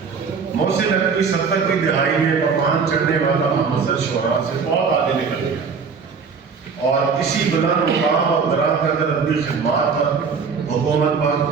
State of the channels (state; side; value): quieter; left; 5.5 dB